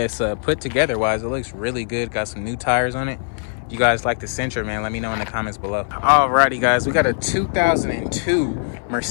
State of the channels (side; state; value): right; silent; 59 dB below the other